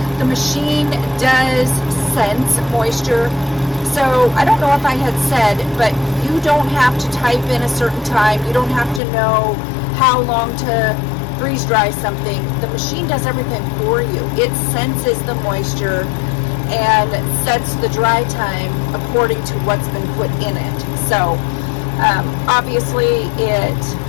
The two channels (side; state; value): right; drops out; at 9.0 s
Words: The machine does sense moisture. So I don't know if I had said, but you don't have to type in a certain time. You don't have to know how long to freeze dry something. The machine does everything for you. It senses the moisture and sets the dry time according to what's been put in it. So obviously it